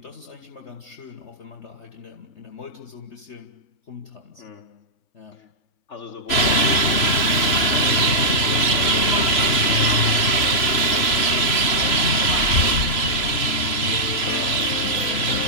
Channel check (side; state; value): right; late; 3.0 ms